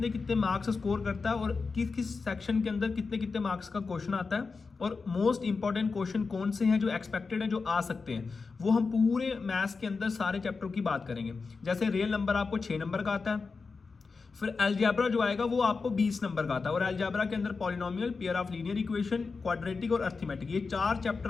कितने मार्क्स स्कोर करता है और किस किस सेक्शन के अंदर कितने कितने मार्क्स का क्वेश्चन आता है और मोस्ट इंपॉर्टेंट क्वेश्चन कौन से हैं जो एक्सपेक्टेड है जो आ सकते हैं, वो हम पूरे मैथ्स के अंदर सारे चैप्टर की बात करेंगे। जैसे रियल नंबर आपको 6 नंबर का आता है, फिर अलजेब्रा जो आएगा वो आपको 20 नंबर का आता है और अलजेब्रा के अंदर polynomial, pair of linear equation, quadratic और अर्थमेटिक, ये 4 चैप्टर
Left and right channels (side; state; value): right; quieter; 4.5 dB